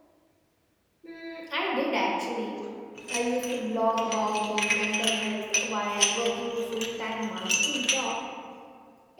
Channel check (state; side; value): identical; both; correlation 1.00